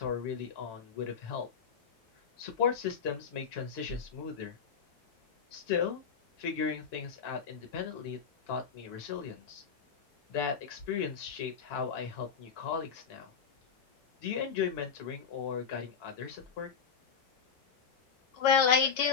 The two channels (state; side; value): quieter; right; 6.6 dB